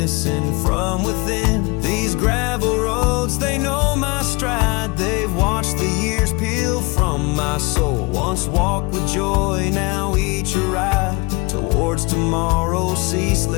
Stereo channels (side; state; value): right; quieter; 26.9 dB